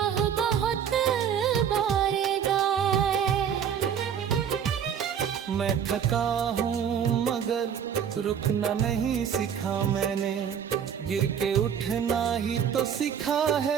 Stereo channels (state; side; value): quieter; left; 8.2 dB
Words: बहुत बारेगा। मैं थका हूँ मगर रुकना नहीं सीखा मैंने। गिर के उठना ही तो सीखा